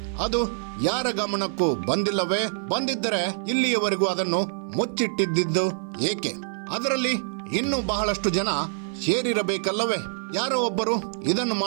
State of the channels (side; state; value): left; silent; 56 dB below the other